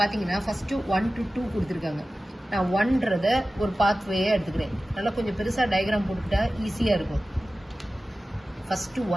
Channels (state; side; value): normal; both; correlation 0.95